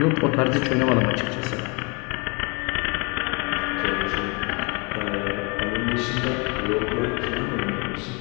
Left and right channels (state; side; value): quieter; right; 31.3 dB